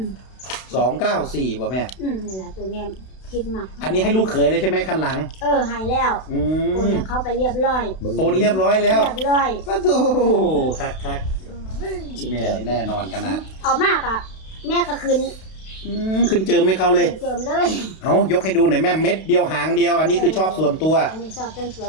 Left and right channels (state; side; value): late; right; 32 ms